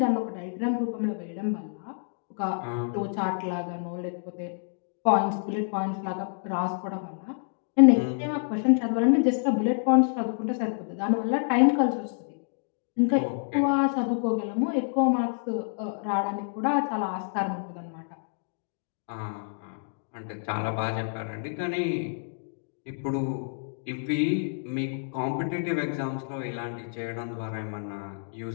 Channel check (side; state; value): right; silent; digital silence